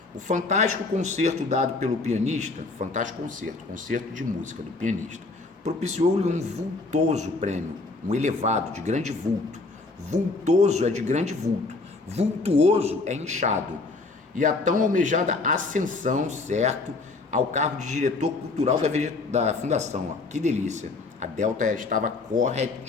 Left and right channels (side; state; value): right; quieter; 3.6 dB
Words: O fantástico concerto dado pelo pianista, fantástico concerto de música do pianista, propiciou-lhe um vultoso prêmio, um elevado, de grande vulto. Vultoso é de grande vulto, vultuoso é inchado. E a tão almejada ascensão, certo, ao cargo de diretor cultural da fundação. Ó. Que delícia. A Delta estava